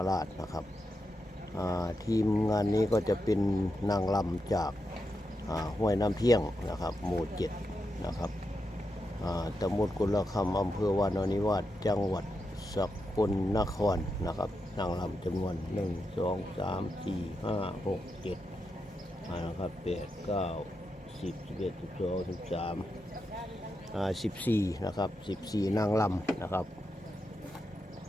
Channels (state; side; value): normal; both; correlation 0.86